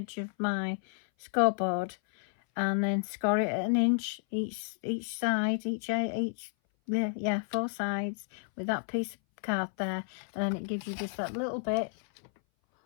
of my scoreboard, and then score it at 1 inch each side, each 4 sides with that piece of card there, and then it gives you just that little bit,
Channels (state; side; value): silent; right; 57 dB below the other